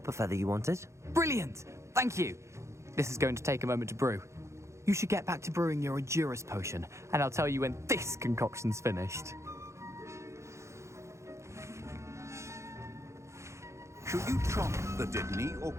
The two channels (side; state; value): left; late; 0.14 ms